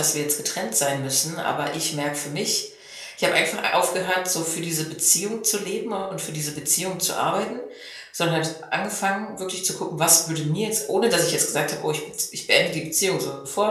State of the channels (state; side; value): identical; both; correlation 1.00